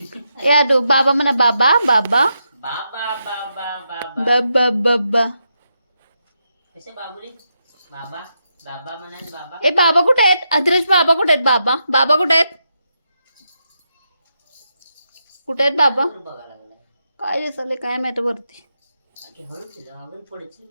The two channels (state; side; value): inverted; both; correlation -0.83